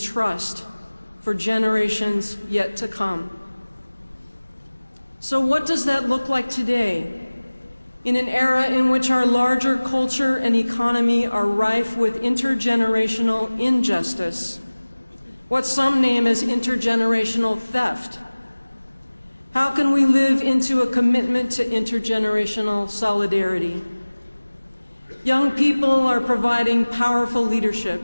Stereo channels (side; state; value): both; inverted; correlation -1.00